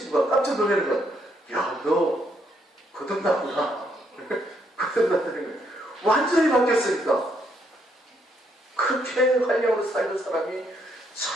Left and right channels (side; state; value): both; normal; correlation 0.73